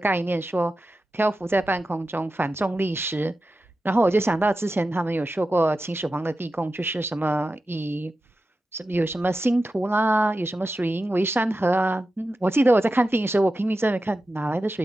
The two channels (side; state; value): both; normal; correlation 0.92